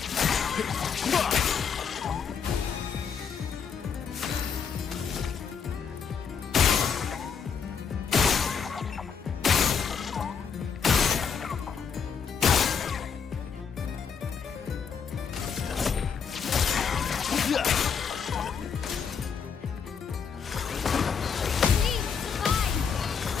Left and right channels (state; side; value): quieter; right; 6.6 dB